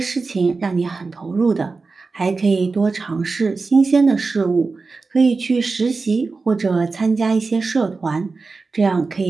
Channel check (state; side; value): quieter; left; 4.1 dB